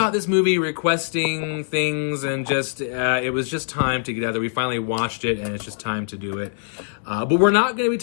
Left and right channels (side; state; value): right; silent; digital silence